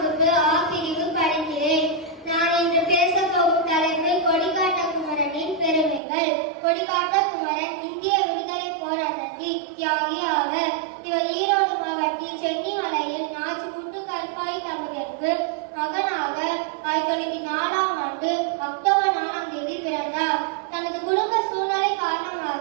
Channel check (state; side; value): drops out; left; at 6.0 s